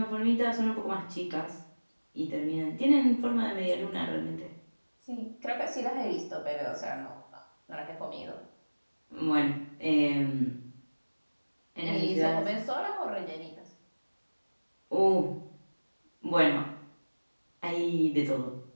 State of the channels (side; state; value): both; inverted; correlation -1.00